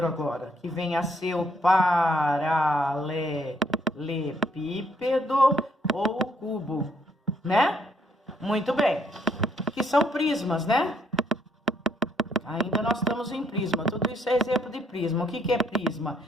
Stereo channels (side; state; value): both; normal; correlation 0.69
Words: agora, que vem a ser o paralelepípedo ou o cubo, né? Muito bem. Que são prismas, né? Ainda nós estamos em prisma. Tudo isso é exemplo de prisma. O que é prisma?